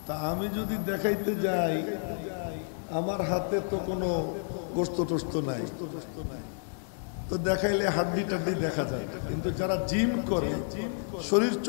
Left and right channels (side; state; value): right; silent; 58 dB below the other